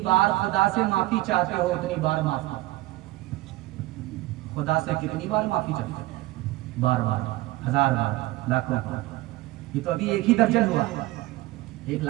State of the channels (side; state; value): left; quieter; 18.3 dB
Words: बार खुदा से माफी चाहते हो उतनी बार माफ करो। खुदा से कितनी बार माफी चाहते हो? बार बार, 1000 बार, लाखों बार। ये तो अभी 1 ही दर्जन हुआ, 1